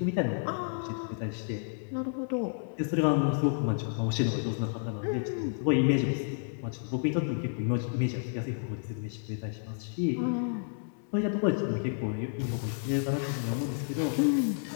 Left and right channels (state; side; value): silent; right; 57 dB below the other